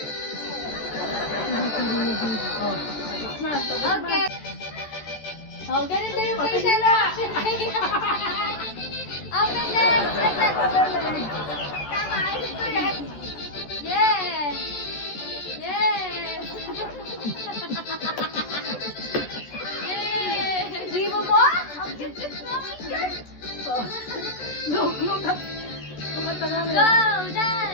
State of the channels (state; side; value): late; right; 14 ms